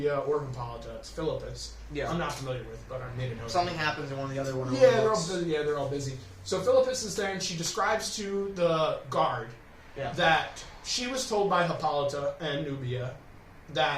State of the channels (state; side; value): identical; both; correlation 1.00